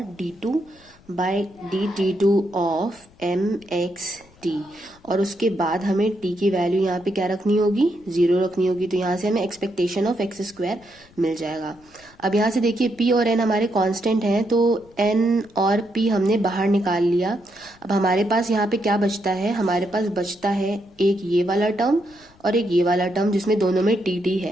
d2 by dt2 of mxt, और उसके बाद हमें t की वैल्यू यहाँ पे क्या रखनी होगी, 0 रखनी होगी। तो यहाँ से हमें एक्सपेक्टेशन ऑफ एक्स स्क्वायर मिल जाएगा। अब यहाँ से देखिए p और n हमारे कांस्टेंट हैं, तो n और p हमने बाहर निकाल लिया। अब हमारे पास यहाँ पे क्या बचता है, हमारे पास बचता है एक ये वाला टर्म और एक ये वाला टर्म जिसमें दोनों में टी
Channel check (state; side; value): noise; left; rumble, 28 dB below the sound